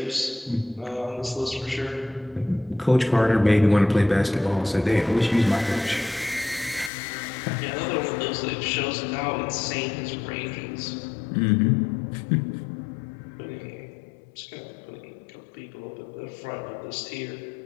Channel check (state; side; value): drops out; right; at 6.9 s